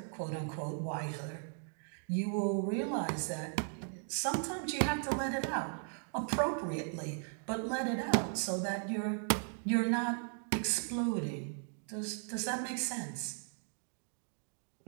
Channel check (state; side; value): silent; left; 53 dB below the other